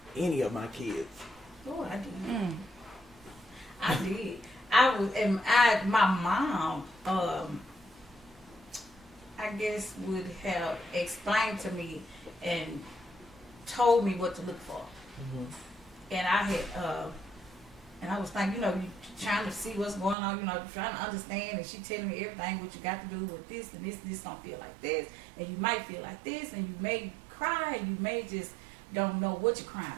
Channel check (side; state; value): left; drops out; at 20.2 s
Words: any of my kids. Oh, I did. I did. I was, and my mom, I guess, would have explained to me and told me what to look for. And I had, and I was thinking, you know, you trying to see what's going on, you know, trying to understand, and she telling me everything, what you got to do with this, and this don't feel like this, and you might feel like this, and you may cry, and you may just don't know what you're crying